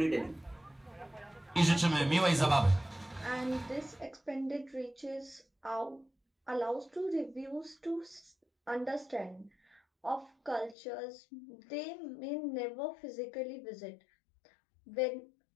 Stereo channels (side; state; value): right; drops out; at 10.8 s